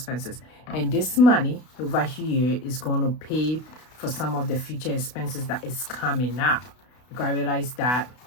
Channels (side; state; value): right; late; 32 ms